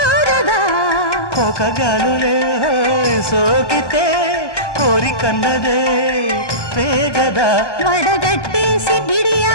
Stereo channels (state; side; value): late; right; 1.3 ms